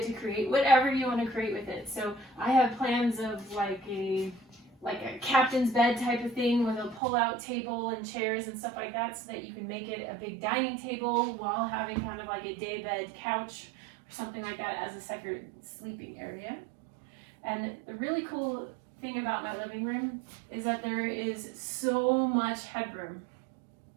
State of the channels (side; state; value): left; drops out; at 7.0 s